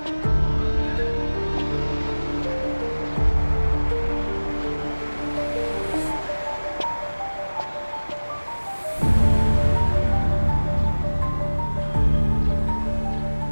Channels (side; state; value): both; inverted; correlation -1.00